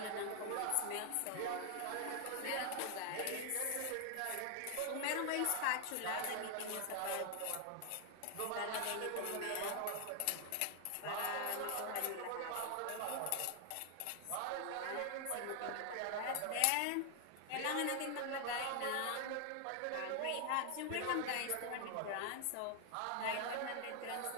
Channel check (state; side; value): different; both; correlation 0.00